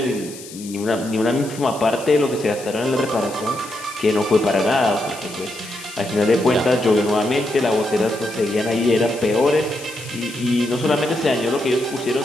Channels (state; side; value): noise; left; hiss, 16 dB below the sound